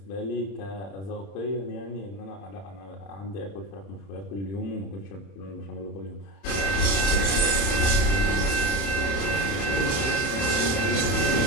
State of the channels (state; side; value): late; right; 30 ms